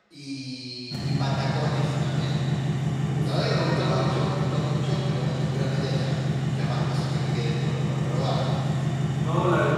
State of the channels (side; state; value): both; identical; correlation 1.00